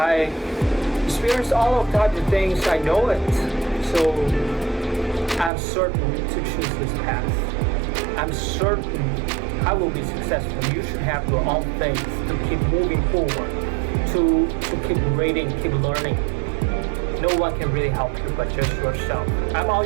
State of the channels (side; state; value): left; drops out; at 5.5 s